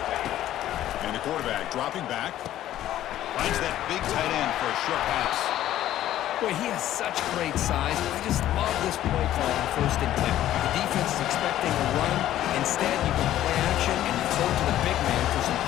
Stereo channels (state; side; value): quieter; right; 12.9 dB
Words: And the quarterback dropping back. Finds that big tight end for a short pass. Boy, he has such great size. I just love this play call on 1st and 10. The defense is expecting a run. Instead, you can play action and you throw to the big man for some